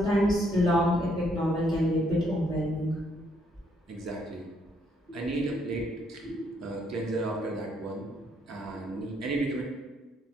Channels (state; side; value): normal; both; correlation 0.71